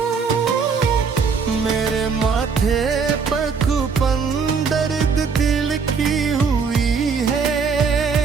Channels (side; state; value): left; quieter; 5.5 dB